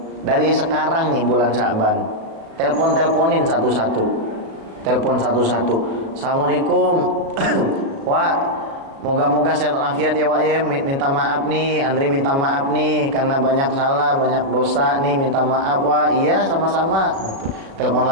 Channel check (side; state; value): left; late; 36 ms